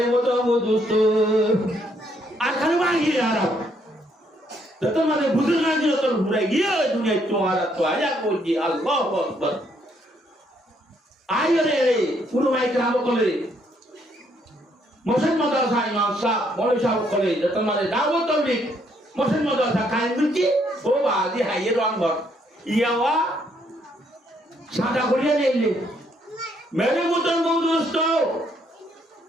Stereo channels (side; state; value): both; normal; correlation 0.71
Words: वो तो वो दोस्तों यार कानो वागी यार तो तुम्हारे बुजुर्ग ने जो तो बुराई गया दुनिया तुम्हारा तो आया कोई जी अल्लाह अकबर आयो रे पुरो भाई कराबो कोले मोशन मदरसा इमाम साहब मौलवी साहब कोले तो तुम्हारे दावो तो भी मोशन मदरसा कान मिलती ओ बादी हाये रंग भर यावा सादा कोरिया ले ले मेरे मुतन बहुत दोस्तों